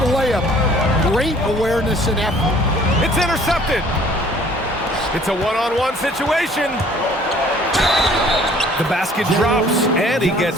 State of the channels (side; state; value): both; normal; correlation 0.55